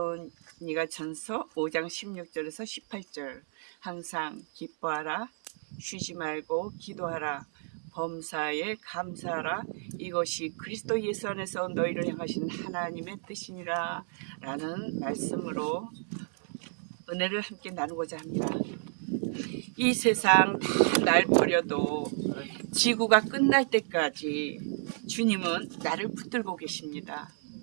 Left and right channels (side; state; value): left; silent; 57 dB below the other